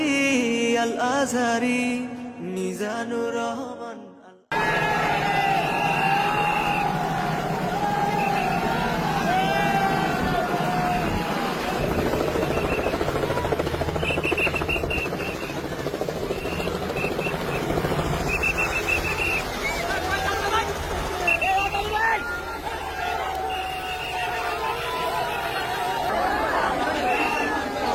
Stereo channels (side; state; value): both; identical; correlation 1.00